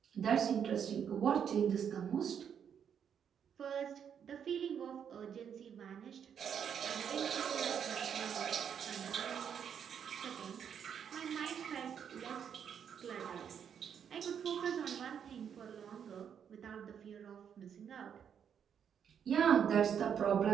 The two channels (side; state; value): left; quieter; 8.0 dB